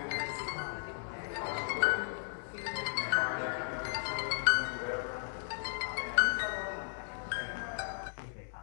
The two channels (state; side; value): silent; right; digital silence